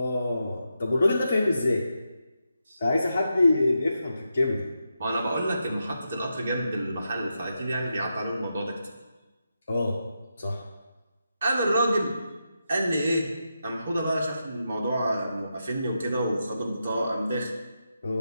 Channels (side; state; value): both; inverted; correlation -0.86